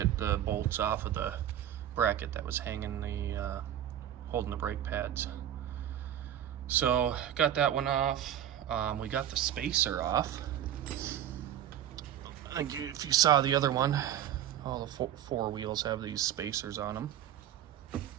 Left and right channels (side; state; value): left; quieter; 11.1 dB